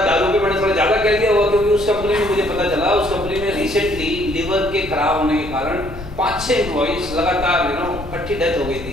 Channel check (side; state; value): left; noise; rumble, 13 dB below the sound